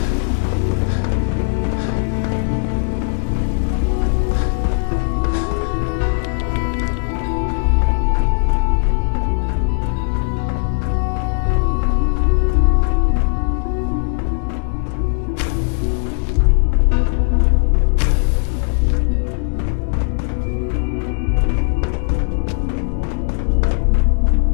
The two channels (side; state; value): right; silent; 63 dB below the other